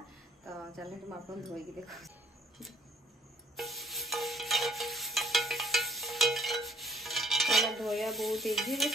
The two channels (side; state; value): both; normal; correlation 0.60